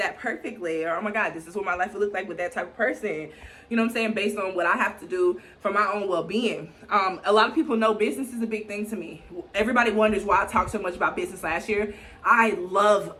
perfectly. Or, oh my God, this is what my life would look like with that type of person. You know what I'm saying? Based on what I have to do for my own well-being. A lot of people know business is a big thing to me. Everybody wonders why I talked so much about business last year. I love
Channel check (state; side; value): identical; both; correlation 1.00